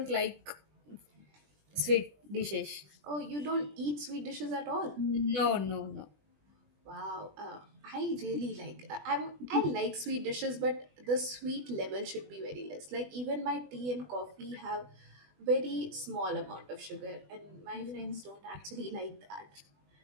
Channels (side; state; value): left; late; 20 ms